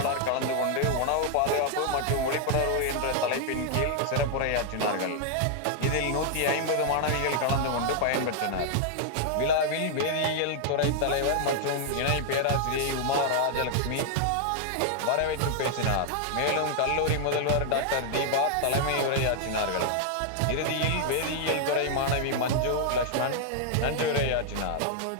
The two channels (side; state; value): both; different; correlation 0.00